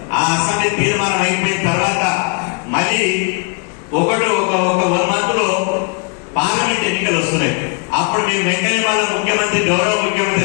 ఆ అసెంబ్లీ తీర్మానం అయిపోయిన తర్వాత మళ్ళీ ఒక 1 month లో పార్లమెంట్ ఎన్నికలు వస్తున్నాయి. అప్పుడు మేము వెంకయ్య గౌరవ ముఖ్యమంత్రి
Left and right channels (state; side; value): quieter; right; 37.4 dB